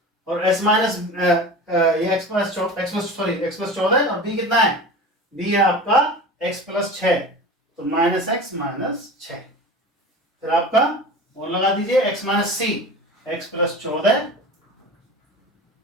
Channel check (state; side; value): normal; both; correlation 0.34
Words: और S माइनस ये x प्लस 14 और B कितना है? B है आपका x प्लस 6, तो माइनस x माइनस 6। फिर आपका और लगा दीजिए x minus C, x plus 14